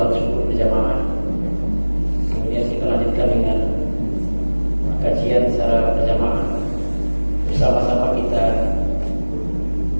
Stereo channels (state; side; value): inverted; both; correlation -1.00